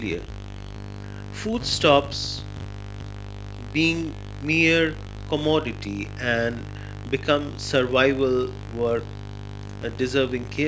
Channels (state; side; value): identical; both; correlation 1.00